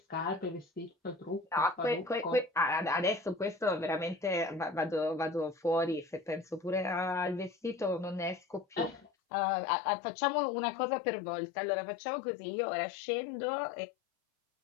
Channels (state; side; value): drops out; right; at 9.1 s